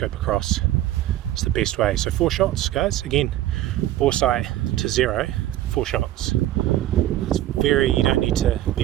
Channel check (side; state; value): left; quieter; 14.0 dB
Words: across. It's the best way. So 4 shots, guys. Again, bore sight to 0, 4 shots. It's you don't need to